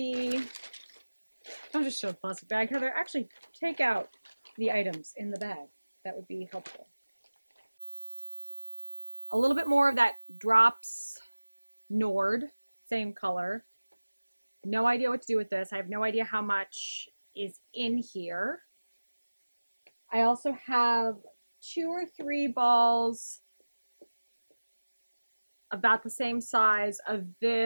don't just show the plastic bag, Heather. Actually, take out the items in the bag. That would be helpful. A little bit more of that Drops Nord, same color. No idea what to do with this. I have no idea how much is in here. I also have 2 or 3 balls about the same size of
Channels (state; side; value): inverted; both; correlation -1.00